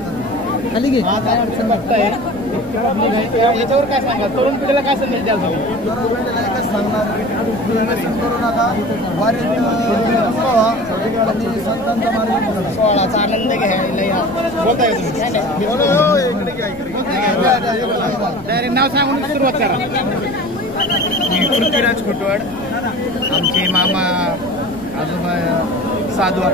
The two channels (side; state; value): left; noise; rumble, 20 dB below the sound